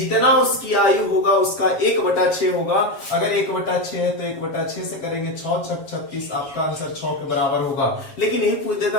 उसकी आयु होगा उसका 1/6 होगा। अगर 1/6 है तो 1/6 से करेंगे 6 6 36, आपका आंसर 6 के बराबर होगा। लेकिन यही पूछ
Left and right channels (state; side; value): late; right; 7.4 ms